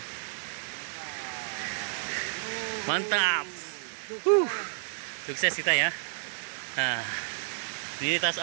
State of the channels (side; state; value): left; silent; digital silence